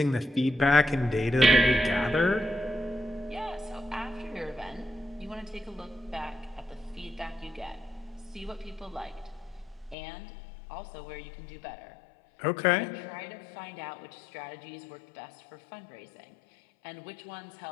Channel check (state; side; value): drops out; right; at 10.0 s